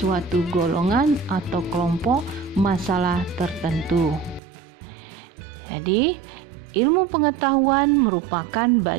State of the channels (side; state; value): left; drops out; at 4.4 s